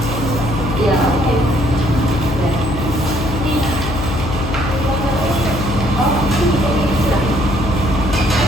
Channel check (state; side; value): noise; left; hum, 6 dB below the sound